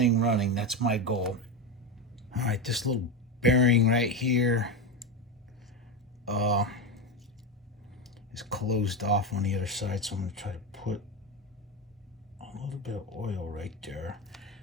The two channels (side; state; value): both; normal; correlation 0.15